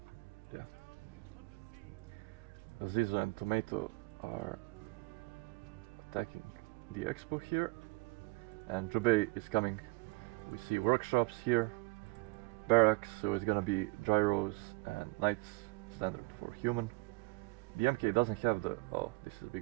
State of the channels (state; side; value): quieter; left; 25.9 dB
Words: yeah. Zizo and Tomato are attacking the expo here. And Jubei is coming. We see workshops here. Barracks, so it's gonna be gyros and knights, standard for human. The MK doesn't have the, oh, this is a